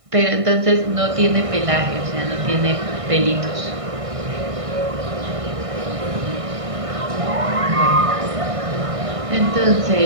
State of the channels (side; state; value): left; late; 1.6 ms